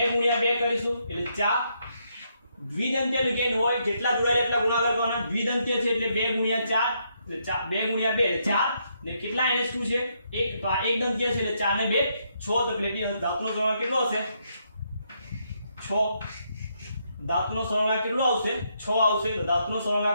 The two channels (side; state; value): both; inverted; correlation -0.76